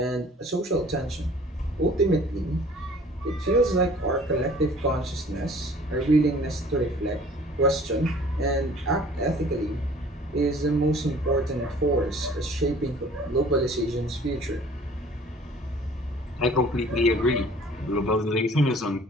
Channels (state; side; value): normal; both; correlation 0.51